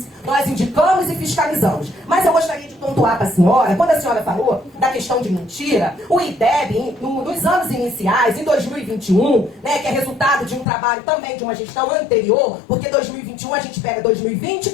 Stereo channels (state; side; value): drops out; right; at 10.7 s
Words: Nós indicamos e fiscalizamos. Mas eu gostaria de pontuar para a senhora, quando a senhora falou da questão de mentira, o IDEB, nos anos iniciais, em 2021, né, que é resultado de um trabalho também de uma gestão anterior, porque 2021 a gente pega 2020